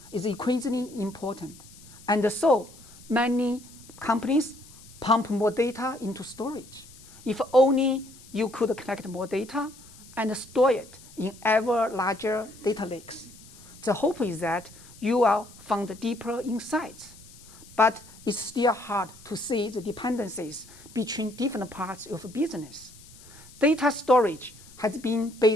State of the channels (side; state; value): left; noise; hiss, 21 dB below the sound